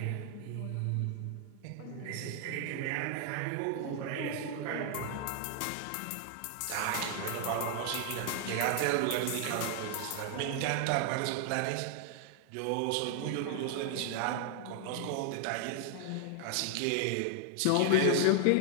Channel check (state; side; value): different; both; correlation 0.00